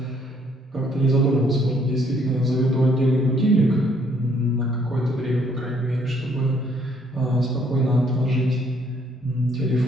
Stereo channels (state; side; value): normal; both; correlation 0.66